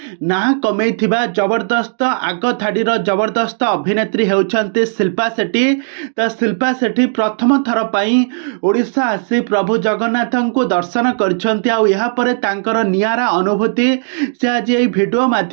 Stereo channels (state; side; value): silent; left; digital silence